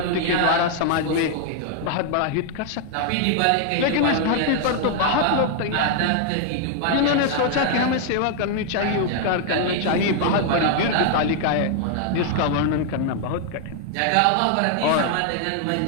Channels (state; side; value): different; both; correlation 0.00